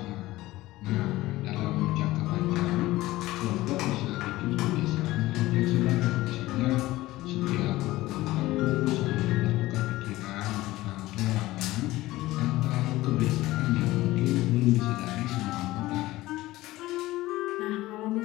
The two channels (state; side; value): quieter; right; 17.6 dB